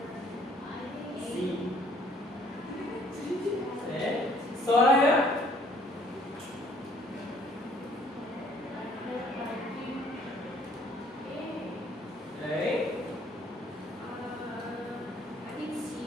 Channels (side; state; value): both; normal; correlation 0.61